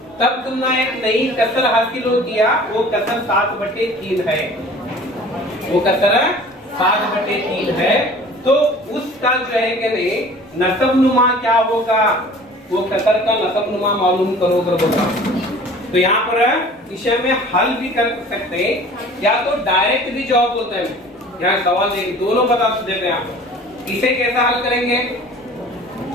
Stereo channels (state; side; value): normal; both; correlation 0.46